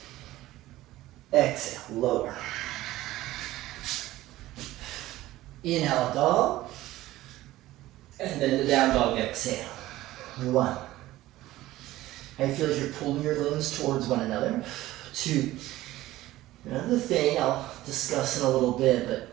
Exhale, lower. Inhale, up dog. And then the down dog, exhale. One. How you feel as you're pulling your limbs towards one another. Two. Another thing I'll discuss in a little bit,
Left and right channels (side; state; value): left; quieter; 16.2 dB